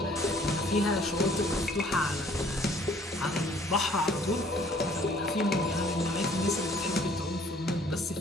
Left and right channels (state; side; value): normal; both; correlation 0.58